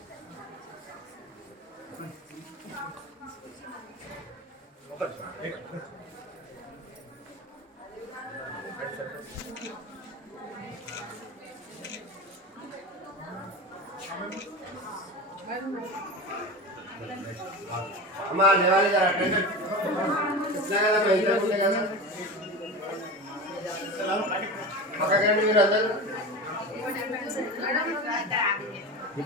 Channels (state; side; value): normal; both; correlation 0.28